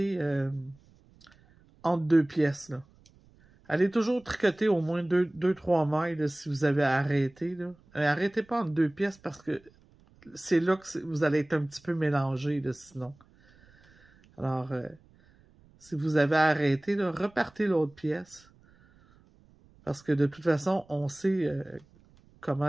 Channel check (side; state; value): right; noise; rumble, 29 dB below the sound